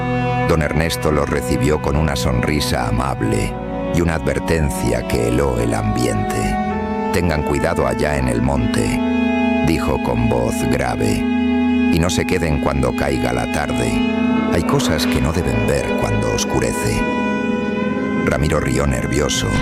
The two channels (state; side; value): identical; both; correlation 1.00